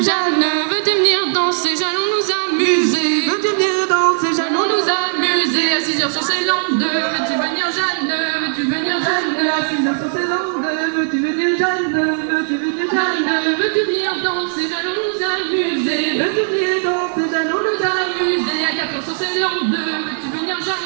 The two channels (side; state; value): left; silent; 67 dB below the other